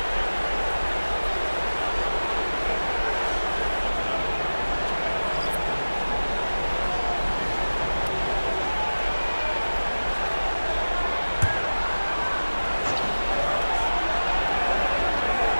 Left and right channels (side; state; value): both; inverted; correlation -1.00